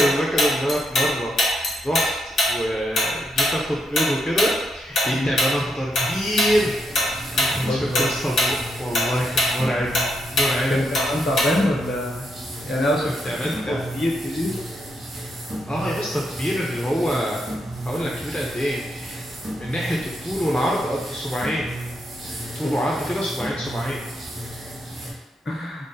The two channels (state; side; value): normal; both; correlation 0.80